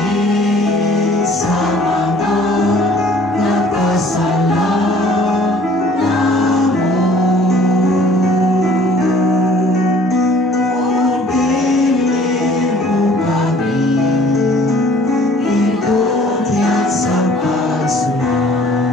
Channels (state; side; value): normal; both; correlation 0.55